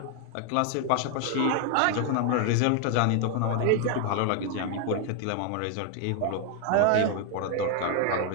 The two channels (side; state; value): both; different; correlation 0.00